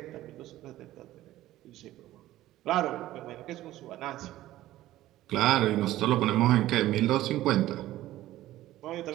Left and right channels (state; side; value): quieter; left; 15.1 dB